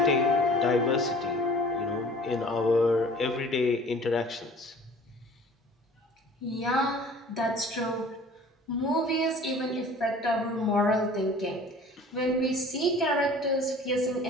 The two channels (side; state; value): both; normal; correlation 0.47